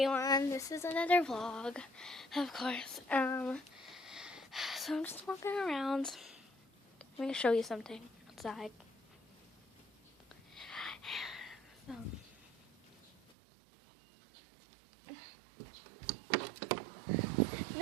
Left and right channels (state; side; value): drops out; left; at 13.4 s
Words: this is another vlog, of course. So I'm just walking around. I'm going to show you something outside. So.